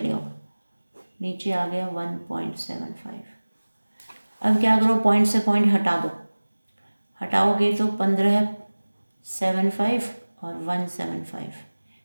आओ। नीचे आ गया 1.75। अब क्या करो, पॉइंट से पॉइंट हटा दो। हटाओगे तो 15.75 और 1.75,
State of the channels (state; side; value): inverted; both; correlation -1.00